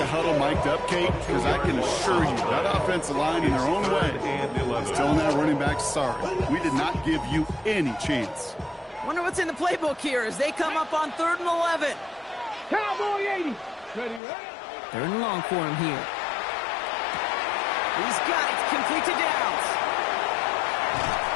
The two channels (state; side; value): drops out; right; at 14.2 s